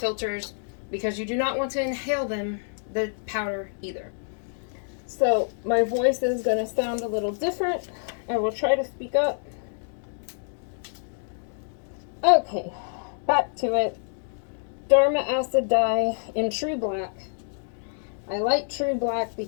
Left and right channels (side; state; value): right; silent; digital silence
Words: because you do not want to inhale the powder either. So my voice is going to sound a little different. I will try to speak up. Okay, back to it. Dharma acid dye in true black. I like true black